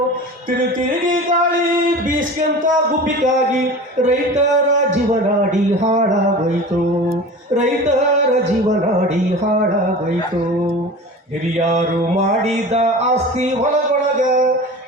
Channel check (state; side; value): normal; both; correlation 0.35